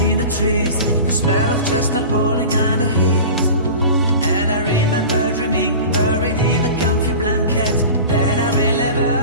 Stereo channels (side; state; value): both; inverted; correlation -0.35